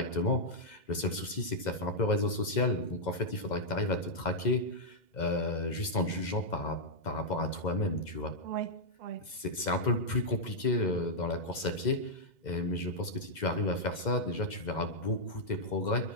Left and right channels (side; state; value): right; late; 2.0 ms